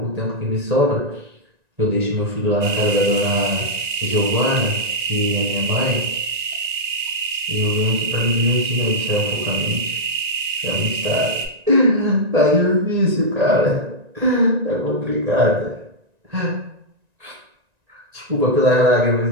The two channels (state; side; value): late; left; 1.9 ms